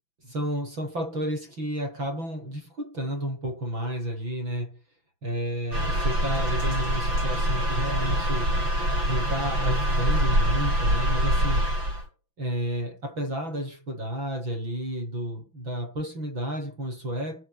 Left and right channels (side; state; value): left; late; 6.0 ms